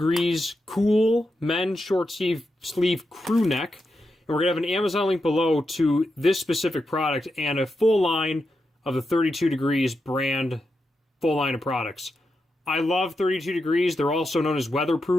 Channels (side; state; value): both; normal; correlation 0.87